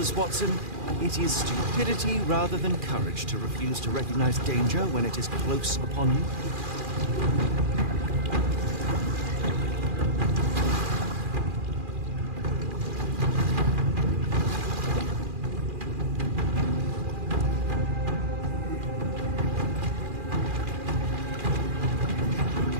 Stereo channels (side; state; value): left; late; 2.4 ms